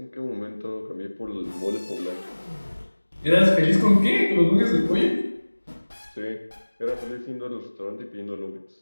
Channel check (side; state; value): both; inverted; correlation -1.00